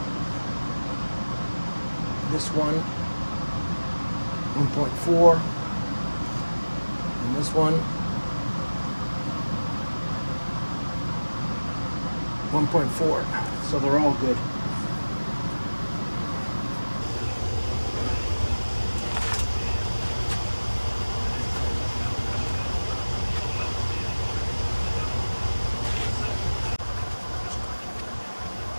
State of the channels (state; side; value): inverted; both; correlation -1.00